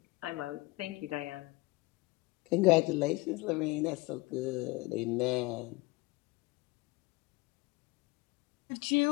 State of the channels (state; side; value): quieter; right; 23.0 dB